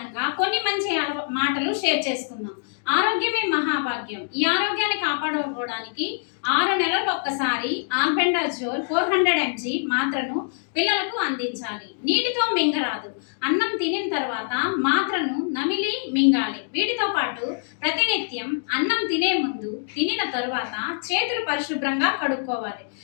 కొన్ని మంచి మాటలు షేర్ చేసుకుందాం. ఆరోగ్యమే మహాభాగ్యం. ఈ ఆరోగ్యాన్ని కాపాడుకోవడానికి 6 నెలలకు ఒక్కసారి ఆల్బెండాజోల్ 400 mg మాత్రను పిల్లలకు అందించాలి. నీటితో మింగరాదు. అన్నం తినిన తర్వాత మాత్రను నమిలి మింగాలి. వీటితో పాటు ప్రతినిత్యం అన్నం తినే ముందు, తినిన తరువాత చేతులు పరిశుభ్రంగా కడుక్కోవాలి.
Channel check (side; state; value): right; silent; digital silence